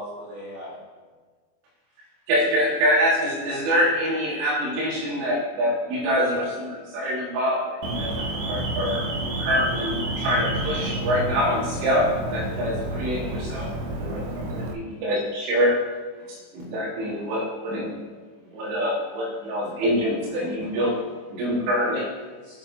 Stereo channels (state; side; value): late; left; 24 ms